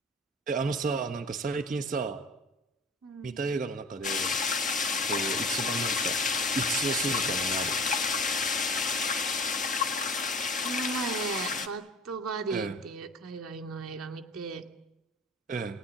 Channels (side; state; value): both; normal; correlation 0.41